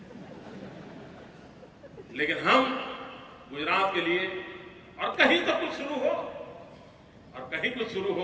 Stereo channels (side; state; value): both; identical; correlation 1.00